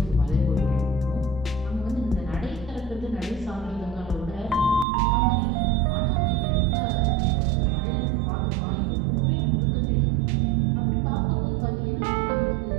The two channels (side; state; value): left; drops out; at 4.9 s